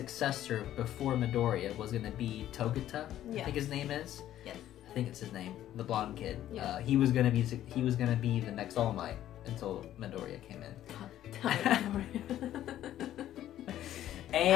before Midoriya was going to be Togata. Yeah. I think his name is. Yes. I think it's his name. The blonde kid. Yeah. He was gonna be the next All Might until Midoriya came in.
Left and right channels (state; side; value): quieter; right; 12.3 dB